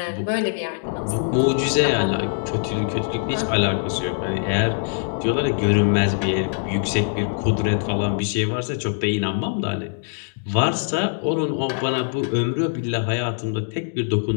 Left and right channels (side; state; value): right; silent; digital silence